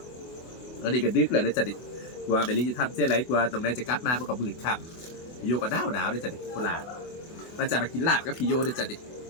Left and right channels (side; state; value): right; late; 24 ms